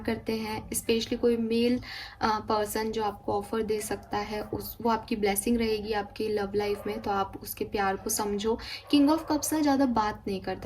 करते हैं, स्पेशली कोई मेल पर्सन जो आपको ऑफर दे सकता है, उस वो आपकी ब्लेसिंग रहेगी आपकी लव लाइफ में, तो आप उसके प्यार को समझो। किंग ऑफ कप्स ना ज़्यादा बात नहीं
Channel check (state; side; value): identical; both; correlation 1.00